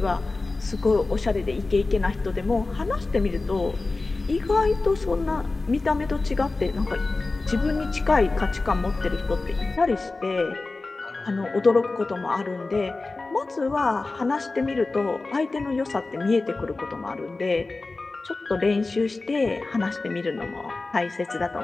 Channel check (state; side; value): quieter; right; 3.5 dB